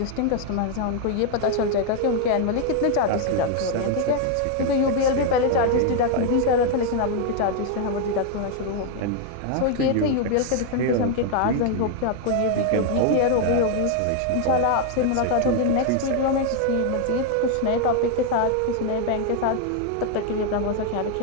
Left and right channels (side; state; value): both; different; correlation 0.00